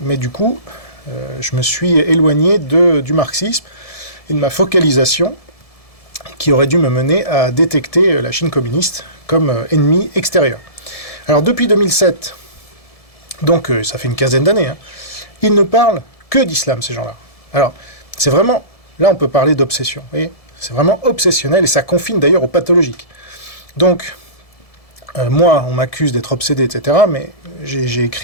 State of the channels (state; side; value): late; right; 1.7 ms